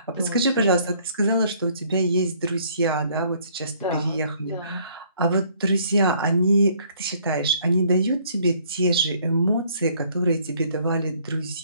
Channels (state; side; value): inverted; both; correlation -0.62